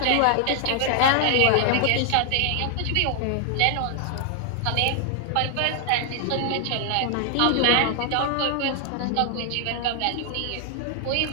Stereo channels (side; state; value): both; different; correlation 0.00